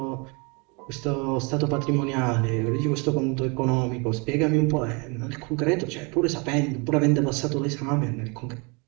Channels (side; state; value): left; quieter; 31.0 dB